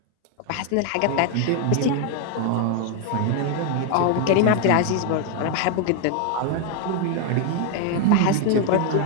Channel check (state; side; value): different; both; correlation 0.01